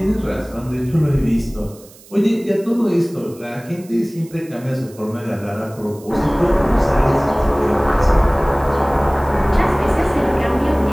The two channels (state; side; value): noise; right; hiss, 24 dB below the sound